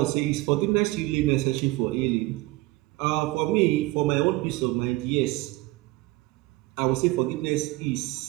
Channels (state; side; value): quieter; left; 20.7 dB